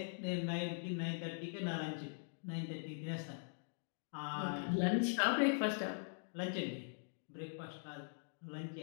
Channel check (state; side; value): silent; right; digital silence